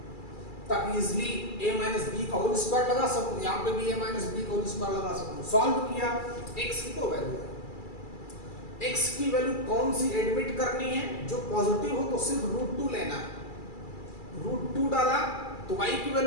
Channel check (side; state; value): right; late; 2.3 ms